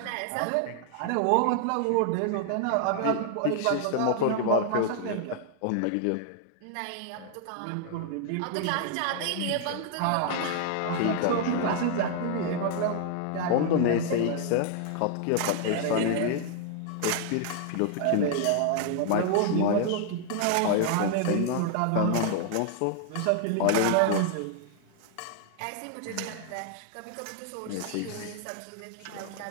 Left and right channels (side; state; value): both; different; correlation 0.00